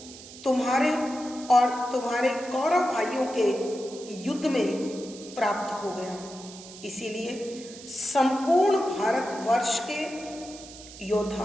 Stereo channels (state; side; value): noise; right; hiss, 16 dB below the sound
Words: तुम्हारे और तुम्हारे कौरव भाइयों के युद्ध में प्राप्त हो गया। इसीलिए संपूर्ण भारतवर्ष के